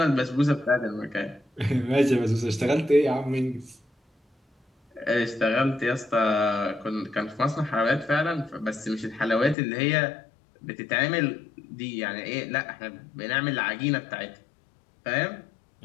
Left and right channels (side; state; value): right; drops out; at 9.6 s